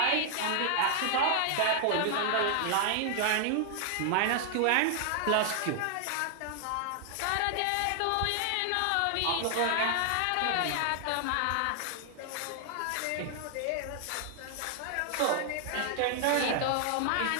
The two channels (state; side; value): different; both; correlation 0.00